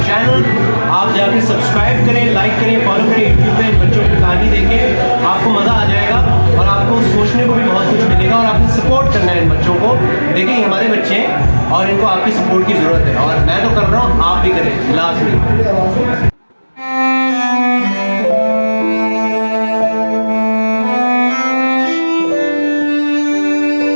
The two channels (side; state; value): both; inverted; correlation -1.00